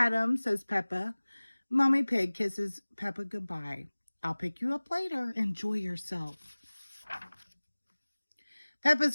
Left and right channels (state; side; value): inverted; both; correlation -1.00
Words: says Peppa. Mommy Pig kisses Peppa goodbye. I'll pick you up later. Enjoy yourself. Peppa's